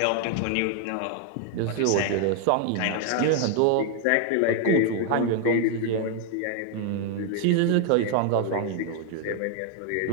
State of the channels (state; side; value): different; both; correlation 0.00